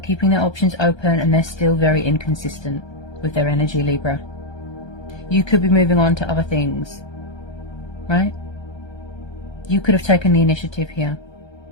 their options open and they're still very inconsistent with their energy, Libra. You could be moving on to other things, right? You could have taken the initiative here.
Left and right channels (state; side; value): late; right; 1.3 ms